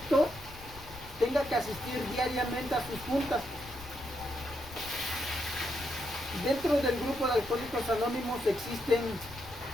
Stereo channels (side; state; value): left; noise; rumble, 17 dB below the sound